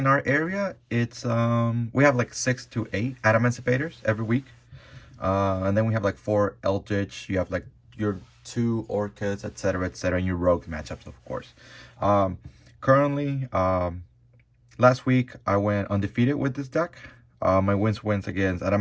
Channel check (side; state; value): both; identical; correlation 1.00